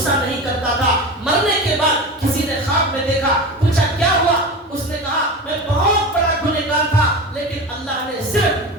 نہیں کرتا تھا. مرنے کے بعد کسی نے خواب میں دیکھا, پوچھا کیا ہوا, اس نے کہا میں بہت بڑا گنہگار تھا لیکن اللہ نے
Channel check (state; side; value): normal; both; correlation 0.28